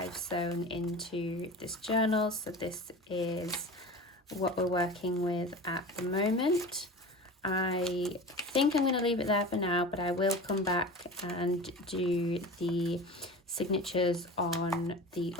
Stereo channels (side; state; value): both; normal; correlation 0.33